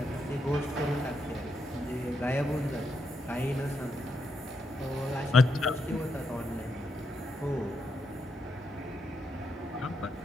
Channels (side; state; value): both; normal; correlation 0.81